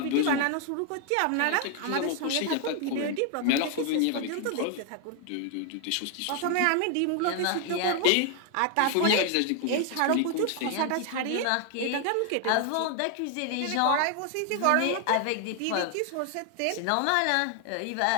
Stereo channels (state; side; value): different; both; correlation 0.00